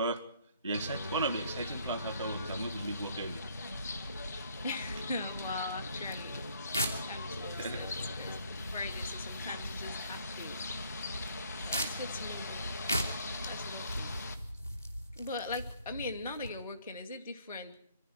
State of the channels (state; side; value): inverted; both; correlation -0.63